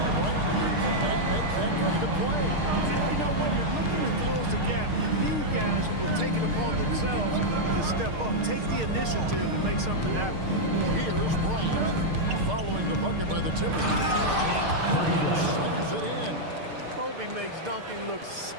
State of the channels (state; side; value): late; left; 6.6 ms